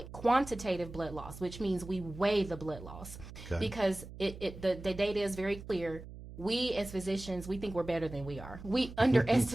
quantitative blood loss, which means we weigh the blood loss, because the data is very clear. We as physicians, we think we're better than we are. We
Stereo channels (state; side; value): noise; right; hum, 14 dB below the sound